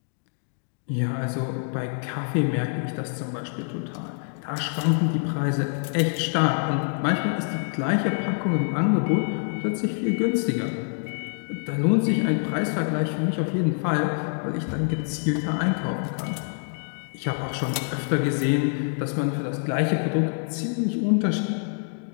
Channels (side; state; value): right; silent; 61 dB below the other